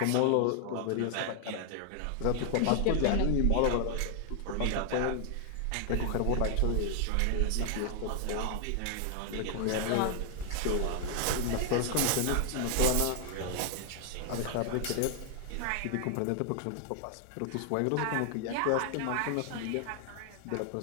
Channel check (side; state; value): both; different; correlation 0.00